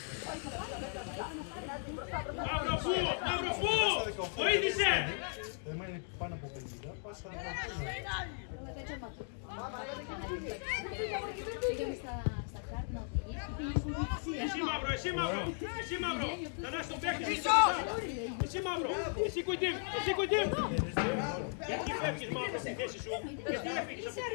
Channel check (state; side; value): silent; right; 53 dB below the other